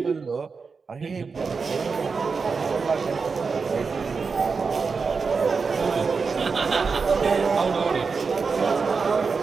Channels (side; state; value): left; quieter; 5.0 dB